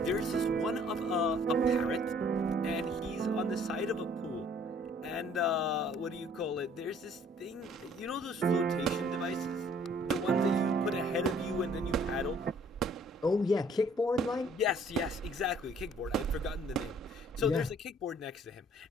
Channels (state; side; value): normal; both; correlation 0.58